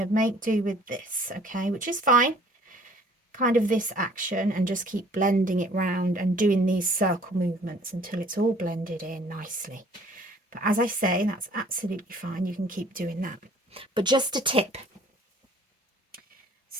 make do with this, okay, which is fine. Kind of this action, and just keep blending it round and doing these circle movements until it's all blended in nicely. But as I say, that's absolutely fine. You can keep doing that. But just a tip.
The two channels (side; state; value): both; normal; correlation 0.55